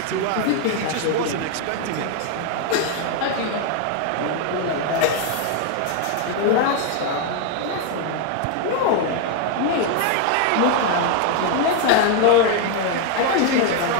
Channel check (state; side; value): different; both; correlation 0.01